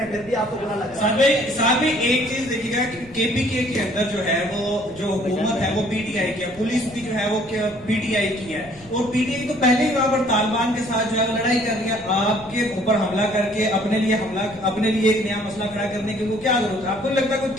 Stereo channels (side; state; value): left; noise; rumble, 24 dB below the sound